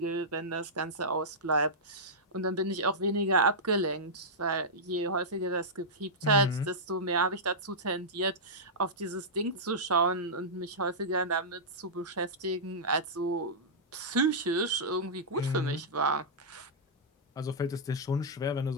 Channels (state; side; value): normal; both; correlation -0.12